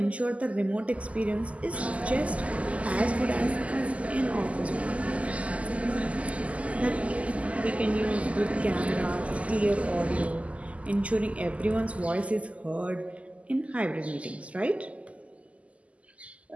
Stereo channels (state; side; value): late; left; 0.066 ms